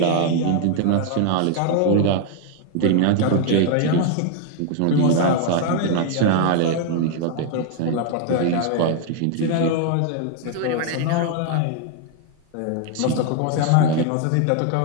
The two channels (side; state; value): both; different; correlation 0.00